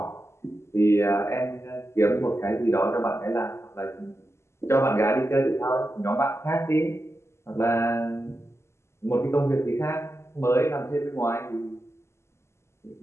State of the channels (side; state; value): right; late; 0.13 ms